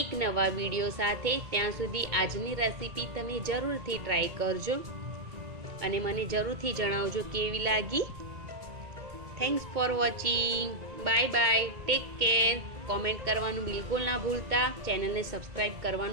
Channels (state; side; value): late; left; 2.2 ms